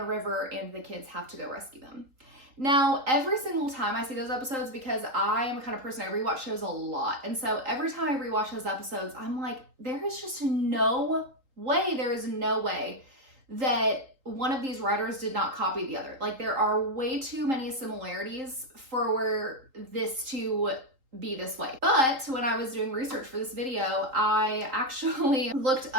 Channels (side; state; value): left; late; 3.8 ms